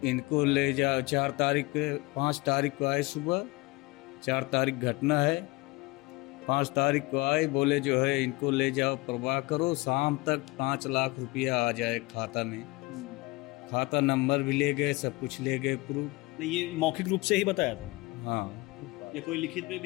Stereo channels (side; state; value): right; quieter; 23.2 dB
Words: इनको ले जाओ 4 तारीख, 5 तारीख को आए सुबह, 4 तारीख घटना है, 5 तारीख को आए, बोले जो है इनको ले जाओ, परवाह करो, शाम तक 5 लाख रुपया आ जाए खाता में। खाता नंबर भी ले गए, सब कुछ ले गए, प्रूफ। ये मौखिक रूप से ही बताया था? हाँ, या कोई लिखित में